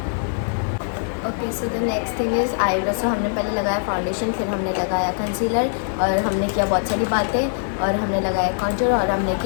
Okay so the next thing is eyebrow. सो हमने पहले लगाया फाउंडेशन, फिर हमने लगाया कंसीलर और हमने किया बहुत सारी बातें और हमने लगाया कॉन्टूर और हमने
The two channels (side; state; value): right; silent; digital silence